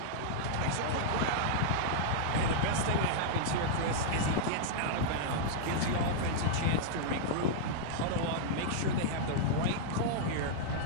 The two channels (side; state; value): both; different; correlation -0.02